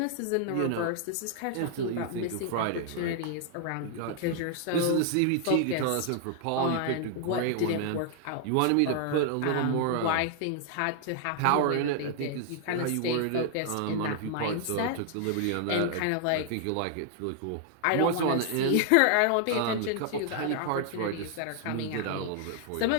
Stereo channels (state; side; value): different; both; correlation -0.01